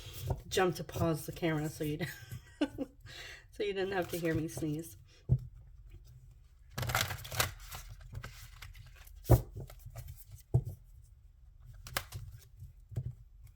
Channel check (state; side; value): identical; both; correlation 1.00